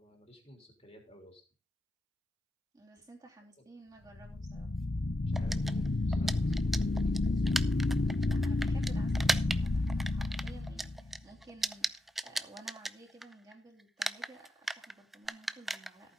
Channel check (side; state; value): both; normal; correlation 0.87